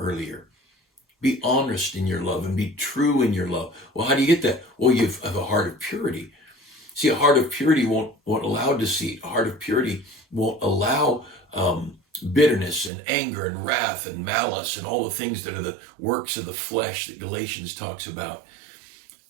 Be honest in your love and be true in your love. Well, how do you get that? Well, you have a heart of purity. See, a heart of purity won't allow deceit. A heart of purity won't allow bitterness and anger and wrath and malice and all the things that are the works of the flesh that Galatians talks about.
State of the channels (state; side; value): drops out; left; at 12.9 s